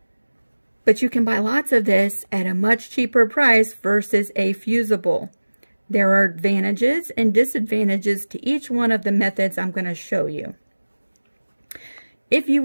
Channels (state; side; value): inverted; both; correlation -1.00